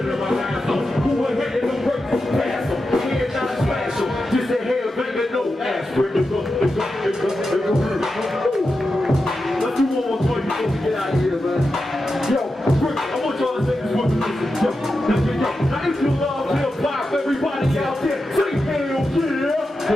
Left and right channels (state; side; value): normal; both; correlation 0.90